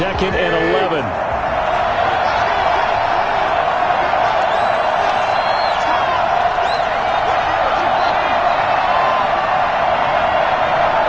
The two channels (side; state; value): both; identical; correlation 1.00